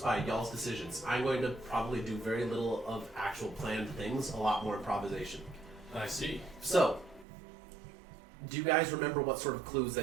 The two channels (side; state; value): left; drops out; at 7.2 s